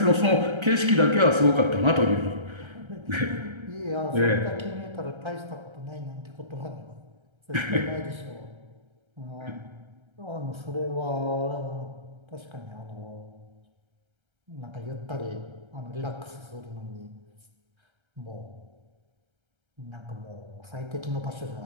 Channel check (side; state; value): left; late; 1.3 ms